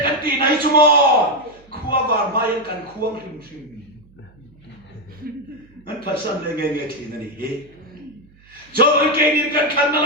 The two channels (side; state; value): right; noise; hum, 28 dB below the sound